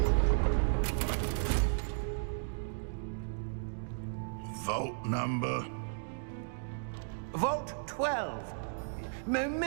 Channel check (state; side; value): silent; left; digital silence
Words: Vault number? Vault 12.